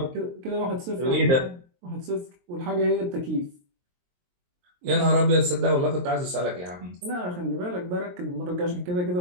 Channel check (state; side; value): late; left; 23 ms